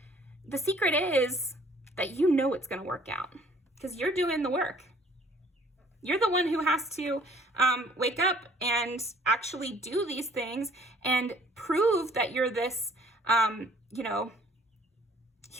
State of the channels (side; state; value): both; normal; correlation 0.56